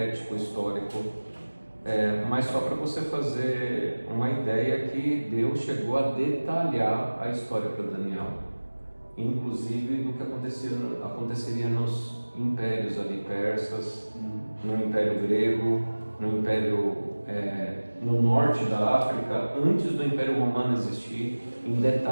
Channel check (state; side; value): inverted; both; correlation -1.00